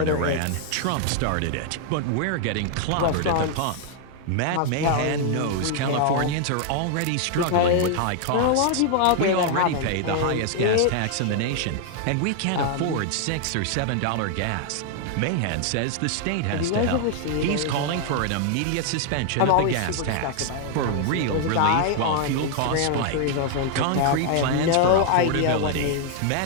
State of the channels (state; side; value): different; both; correlation 0.00